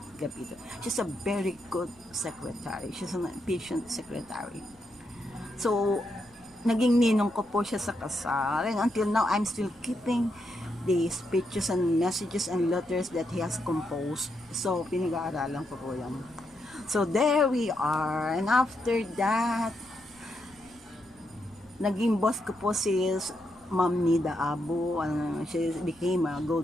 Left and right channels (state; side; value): noise; right; rumble, 28 dB below the sound